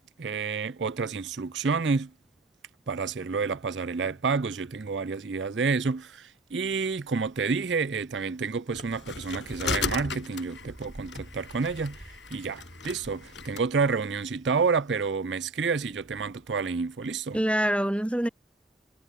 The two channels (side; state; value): left; quieter; 3.4 dB